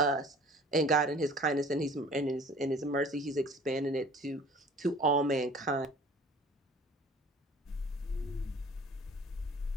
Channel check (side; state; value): both; normal; correlation 0.47